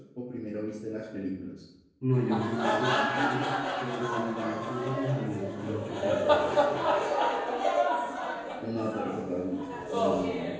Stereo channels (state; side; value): identical; both; correlation 1.00